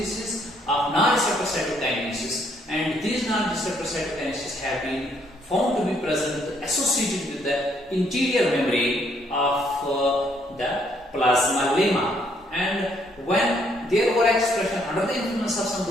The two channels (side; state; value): both; normal; correlation 0.69